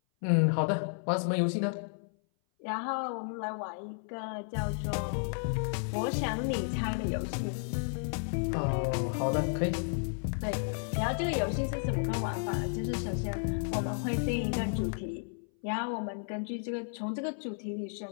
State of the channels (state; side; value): silent; right; 56 dB below the other